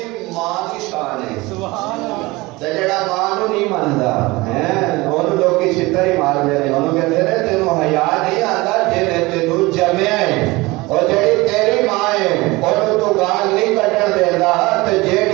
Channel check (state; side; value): quieter; left; 22.0 dB